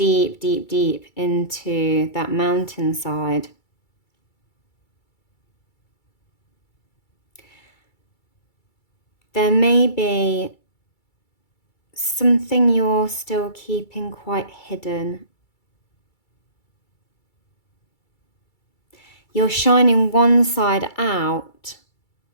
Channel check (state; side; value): late; right; 2.3 ms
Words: deep, deep into that mountainside. There may be something you're still keeping quite hidden. You're shining one side out